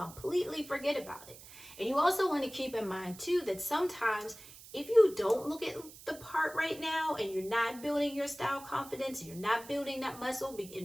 forget about it. And you also want to keep in mind too that sometimes if you don't look at the part right now, and you're not building your style confidence, you're not building that muscle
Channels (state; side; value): noise; right; hiss, 18 dB below the sound